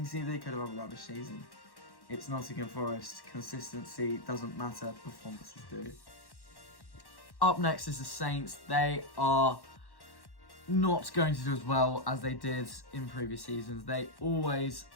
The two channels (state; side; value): late; right; 1.1 ms